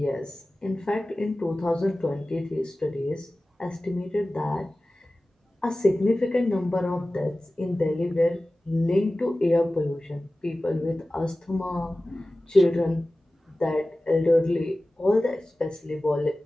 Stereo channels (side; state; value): both; normal; correlation 0.96